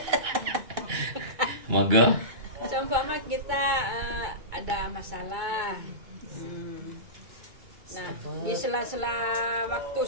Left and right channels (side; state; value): left; late; 2.2 ms